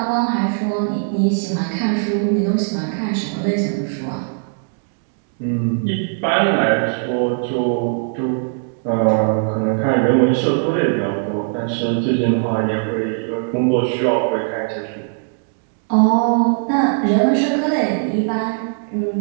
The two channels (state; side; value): silent; left; 66 dB below the other